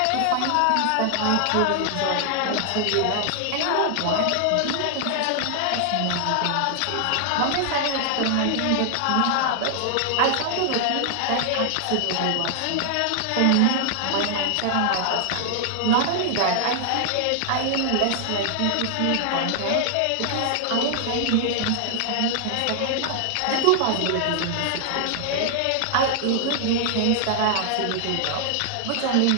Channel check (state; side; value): different; both; correlation 0.00